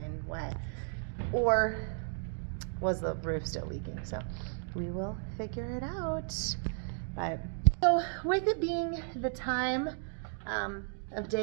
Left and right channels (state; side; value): silent; left; 55 dB below the other